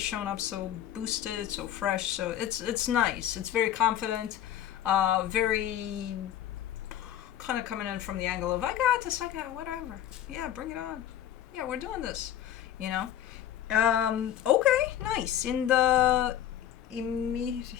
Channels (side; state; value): right; quieter; 11.3 dB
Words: showing up so boosted, so fresh. So it's nice. It's very confident, very kind of coming in from the angle of I got this, I got it, whatever. Yeah, bring it on. Yeah, we're doing this. You know. Okay, nice. In the